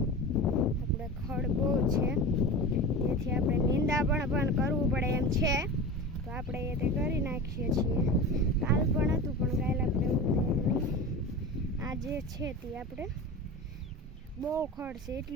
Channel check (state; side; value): normal; both; correlation 0.30